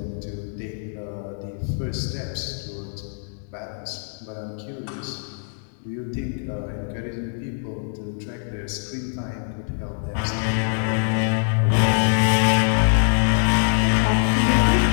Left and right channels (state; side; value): silent; right; digital silence